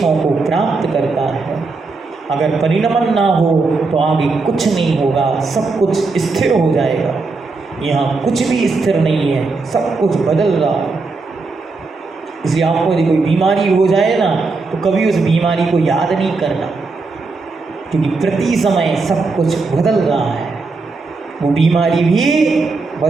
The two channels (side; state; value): left; quieter; 4.0 dB